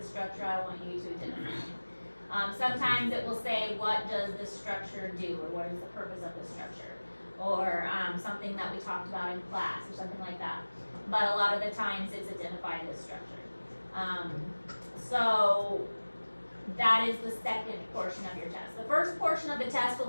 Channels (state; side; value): inverted; both; correlation -1.00